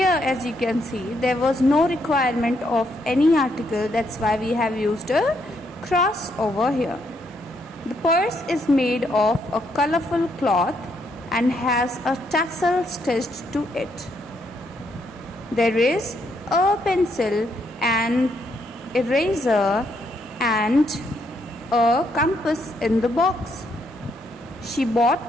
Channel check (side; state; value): both; normal; correlation 0.75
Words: as you can see, there was no requirement of any article. That's why we have used a cross over here. The purse is made of a colorful cloth and has a tassel stitched to it. There is a pencil and eraser and a compass in the box. She